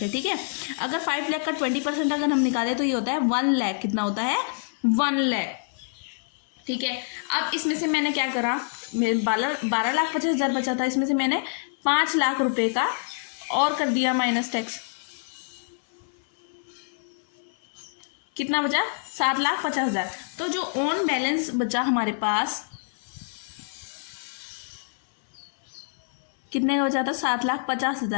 ठीक है। अगर 5 लाख का 20% अगर हम निकालें तो ये होता है 1 लाख। कितना होता है? 1 लाख, ठीक है। अब इसमें से मैंने क्या करा, मेरे 12,50,000 बचा था, इसमें से मैंने 5 लाख रुपए का और कर दिया माइनस टैक्स। कितना बचा? 7,50,000। तो जो ऑन बैलेंस बचा हमारे पास, कितने का बचा था?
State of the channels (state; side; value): silent; right; 61 dB below the other